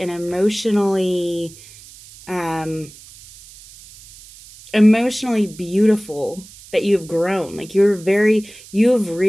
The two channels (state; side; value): noise; right; hiss, 21 dB below the sound